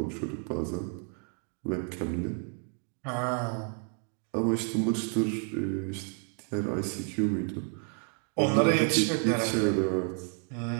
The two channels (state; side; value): quieter; left; 39.9 dB